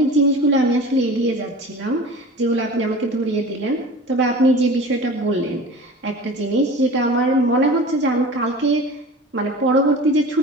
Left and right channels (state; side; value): normal; both; correlation 0.37